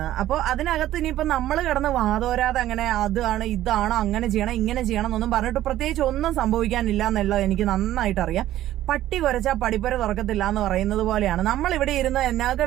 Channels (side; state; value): left; quieter; 13.7 dB